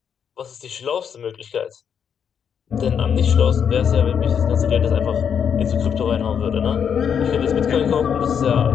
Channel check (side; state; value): right; quieter; 7.7 dB